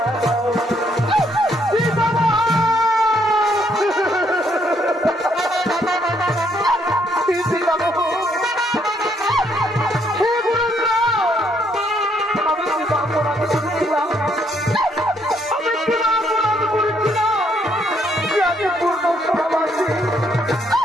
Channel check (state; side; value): normal; both; correlation 0.71